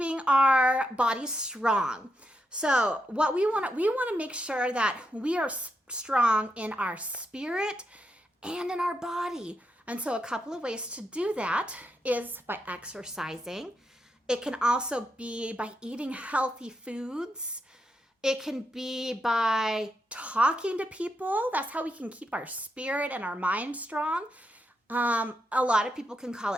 our bodies strong. So what we want to make sure that we are strong in our spirit and in our body. And so a couple of ways to do that is by exercising. It can also be by eating healthy foods. It can be by talking to people. That's how we can keep our spirit and our mind strong. A lot of people can call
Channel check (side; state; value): both; normal; correlation 0.83